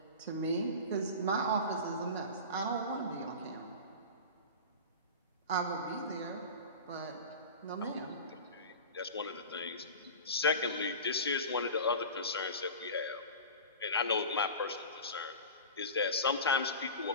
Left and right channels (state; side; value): inverted; both; correlation -0.31